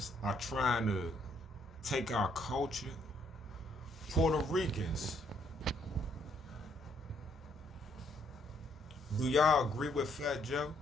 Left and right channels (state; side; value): normal; both; correlation 0.70